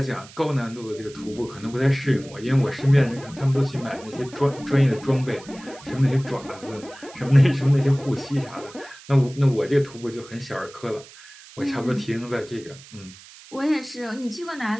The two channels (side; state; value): right; noise; hiss, 20 dB below the sound